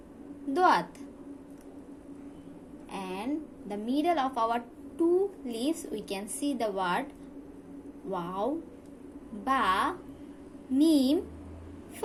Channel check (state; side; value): identical; both; correlation 1.00